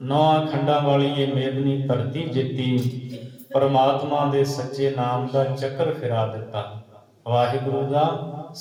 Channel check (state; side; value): identical; both; correlation 1.00